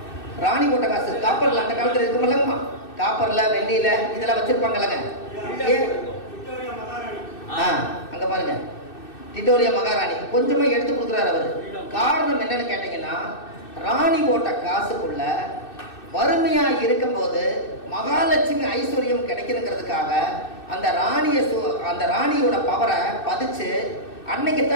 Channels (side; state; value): right; late; 2.6 ms